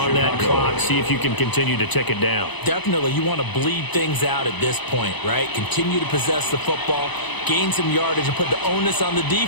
that clock, see if you can continue to tick it down. Definitely. You want to bleed things out at this point, right? Continue to possess the football, gain some yardage, and put the onus on the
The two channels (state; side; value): late; right; 1.0 ms